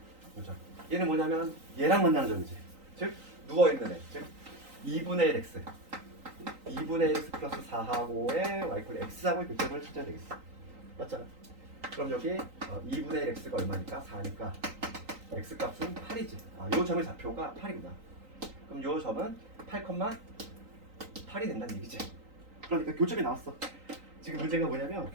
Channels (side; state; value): left; late; 3.9 ms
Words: 얘는 뭐냐면 얘랑 만나는 점이지. 즉 누워 있는 애. 즉 2분의 1 x. 2분의 1 x 플러스 4하고의 y 콜 x하고의 교점을 찾아야 되겠어. 맞잖아. 그럼 여기 2분의 1 x가 얼마니까? 4니까 x 값은 8이지. 요 점의 좌표가 8이구나. 그럼 요 점은 8,8이 된다는 얘기지. 그러니까 교점이 나왔어. 지금 문제가 뭐냐면